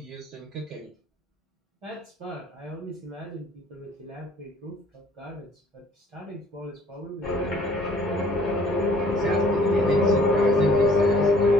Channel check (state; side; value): normal; both; correlation 0.57